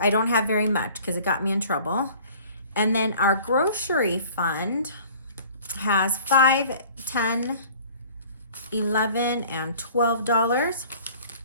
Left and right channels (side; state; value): both; inverted; correlation -0.49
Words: don't have very much because it got me in trouble. And then our grocery fund has $5, $10, $11, and $12.